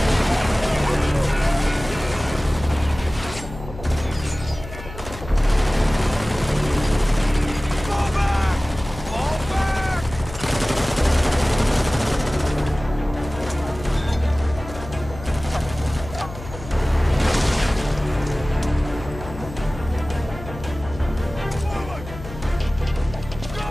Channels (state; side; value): noise; left; hum, 13 dB below the sound